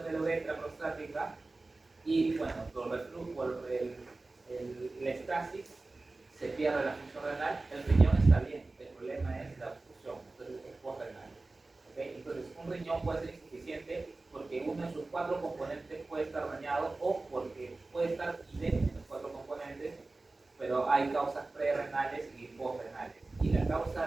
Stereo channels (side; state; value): left; quieter; 3.3 dB